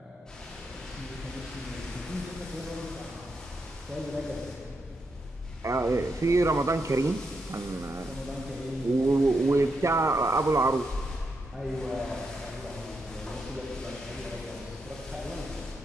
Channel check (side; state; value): both; normal; correlation 0.83